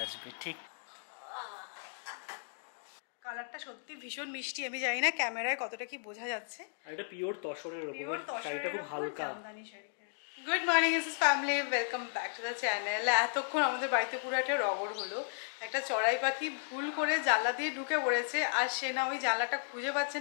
আসবে, ঠিক। কালারটা সত্যি ভীষণ মিষ্টি। আমি জানি না ক্যামেরায় কতটা কি বোঝা যাচ্ছে। আর এটা পিওর তসরের উপর, শাড়িটা খুব হালকা। Good morning is family, welcome back to the channel. এতক্ষণ আমাদের বাড়িতে পুরো একটা রগড় হলো। একটা চড়াই পাখি ভুল করে জানলা দিয়ে ঢুকে পড়েছে, আর সে না ওই জানলাটা খুঁজে পাচ্ছে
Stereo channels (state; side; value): silent; right; digital silence